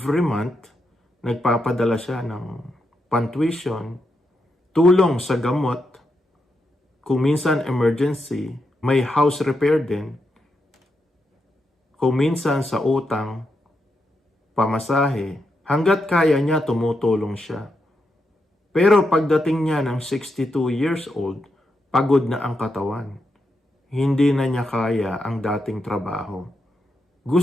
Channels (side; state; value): both; normal; correlation 0.84